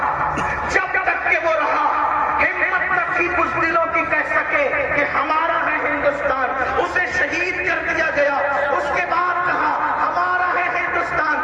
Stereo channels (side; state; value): both; identical; correlation 1.00